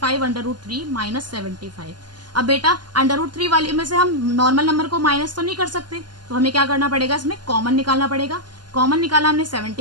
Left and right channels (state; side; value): late; left; 0.71 ms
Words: √3 minus 75। अब बेटा √3 वाली में से हम नॉर्मल नंबर को माइनस तो नहीं कर सकते, तो हमें क्या करना पड़ेगा, इसमें कॉमन निकालना पड़ेगा। कॉमन निकाला हमने